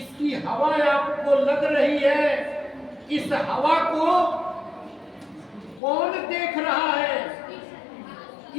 हवा आपको लग रही है, इस हवा को कौन देख रहा है?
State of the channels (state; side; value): drops out; right; at 5.8 s